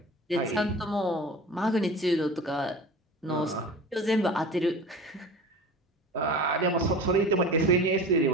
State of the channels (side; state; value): both; normal; correlation 0.36